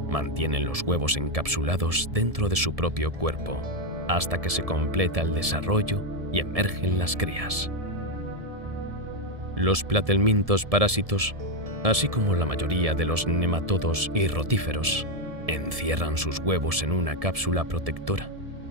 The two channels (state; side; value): late; left; 1.7 ms